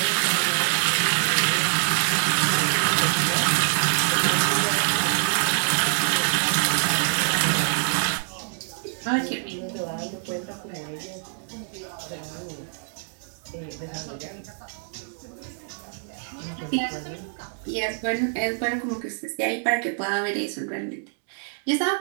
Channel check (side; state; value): left; silent; digital silence